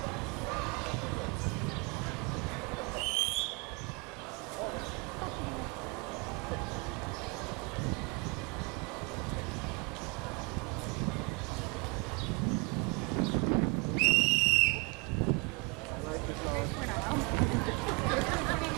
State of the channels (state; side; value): quieter; left; 29.2 dB